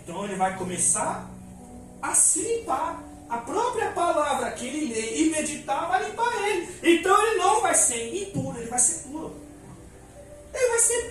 ele vai começar a se limpar. A própria palavra que ele lê e meditar vai limpar ele. Então ele não vai ser impuro, ele vai ser puro. Ele vai ser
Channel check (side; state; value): both; identical; correlation 1.00